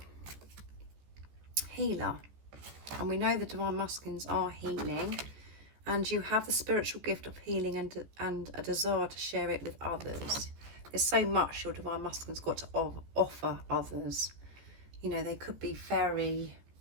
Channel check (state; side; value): late; left; 15 ms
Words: Healer. And we know the Divine Masculines are healing. And you have the spiritual gift of healing and a desire to share it with others. There's so much your Divine Masculine's got to offer others. You know, they could be very